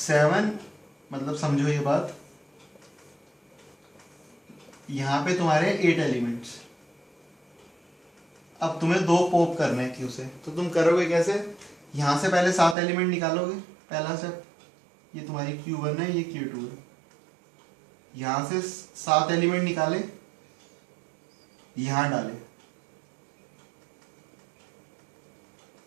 7, मतलब समझो ये बात, यहां पे तुम्हारे 8 एलिमेंट्स। अब तुम्हें 2 पॉप करने हैं Q से, तो तुम करोगे कैसे, यहां से पहले 7 एलिमेंट निकालोगे, पहला स्टेप, ये तुम्हारी Q1 है, ये Q2 है, यहां से 7 एलिमेंट निकाले, यहां डाले,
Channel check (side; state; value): left; drops out; at 12.8 s